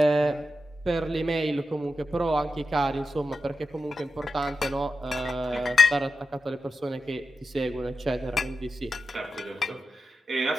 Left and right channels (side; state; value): both; normal; correlation 0.90